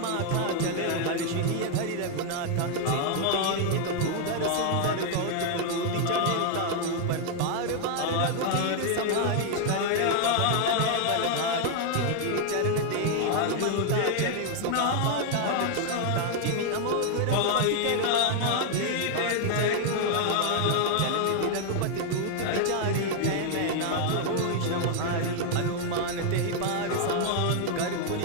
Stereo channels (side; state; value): both; different; correlation 0.00